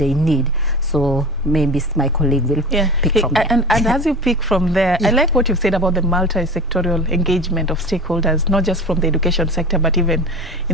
need. So maybe my colleague will pick from there. And as you pick from there, I like what you've said about the multi-sectorial engagement of stakeholders, not just from the education sector, but even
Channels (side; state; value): both; normal; correlation 0.34